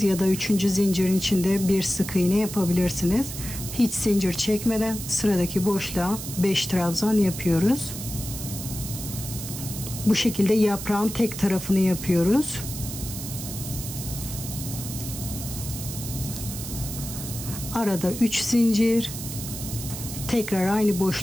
ya da 3. zincirin içinde bir sık iğne yapabilirsiniz. Hiç zincir çekmeden sıradaki boşluğa 5 trabzan yapıyoruz. Bu şekilde yaprağın tek tarafını yapıyoruz. Arada 3 zincir. Tekrar aynı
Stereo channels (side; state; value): right; noise; hiss, 8 dB below the sound